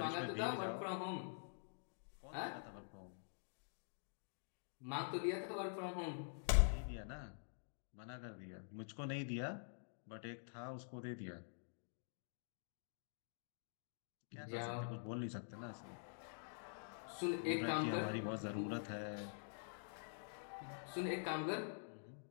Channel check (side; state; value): right; silent; digital silence